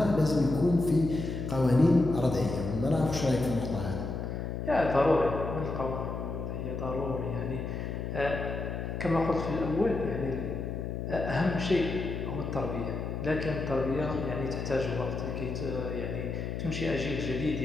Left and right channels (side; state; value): left; noise; hum, 4 dB below the sound